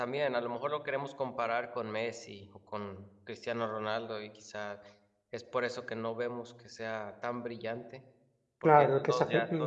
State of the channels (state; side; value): identical; both; correlation 1.00